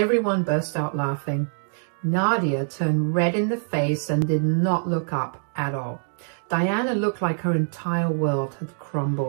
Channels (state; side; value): silent; left; digital silence